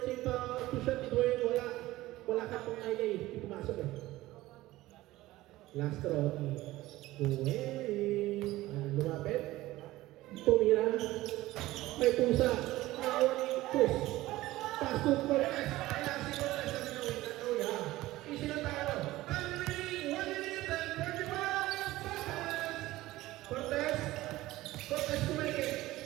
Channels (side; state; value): left; quieter; 17.2 dB